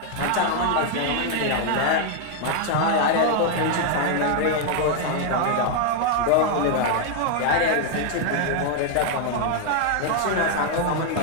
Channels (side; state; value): both; different; correlation 0.00